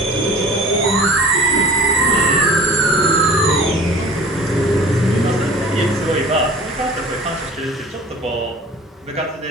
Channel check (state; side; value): normal; both; correlation 0.44